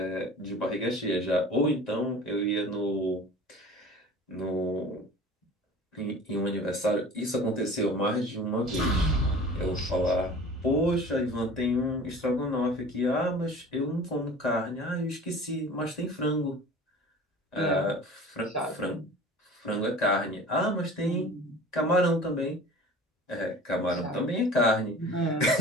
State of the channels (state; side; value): normal; both; correlation 0.41